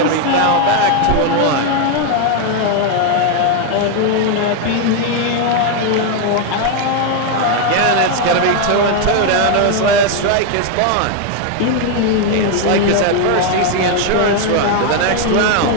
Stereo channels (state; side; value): different; both; correlation 0.01